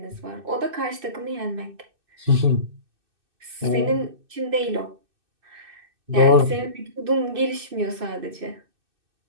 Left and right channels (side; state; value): left; late; 2.6 ms